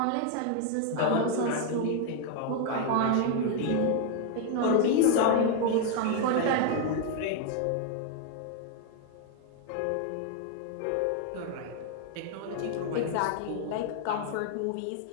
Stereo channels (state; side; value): different; both; correlation 0.01